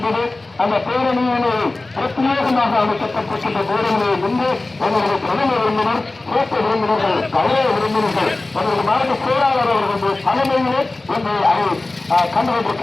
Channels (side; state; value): right; quieter; 3.1 dB